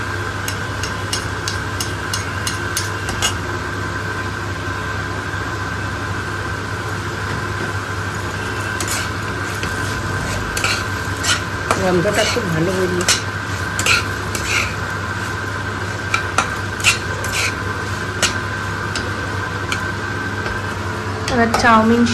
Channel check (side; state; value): both; identical; correlation 1.00